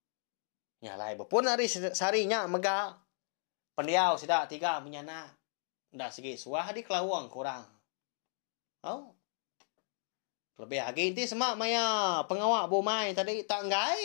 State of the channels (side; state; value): right; silent; digital silence